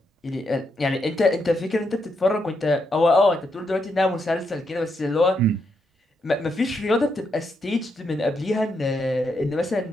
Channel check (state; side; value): normal; both; correlation 0.80